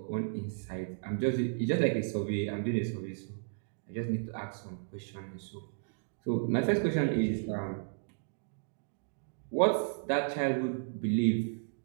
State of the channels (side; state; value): left; silent; digital silence